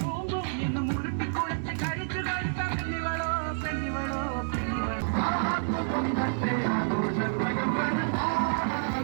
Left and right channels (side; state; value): left; silent; digital silence